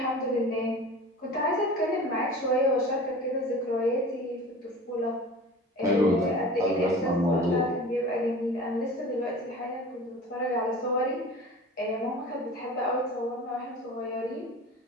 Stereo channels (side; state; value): both; normal; correlation 0.38